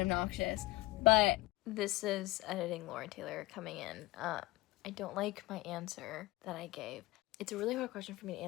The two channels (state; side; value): quieter; right; 19.5 dB